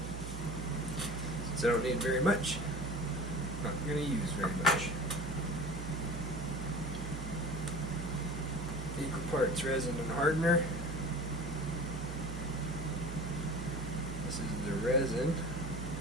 Since I don't need very much, I'm not going to use very much. Equal parts resin and hardener. This is the resin.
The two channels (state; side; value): noise; right; hum, 6 dB below the sound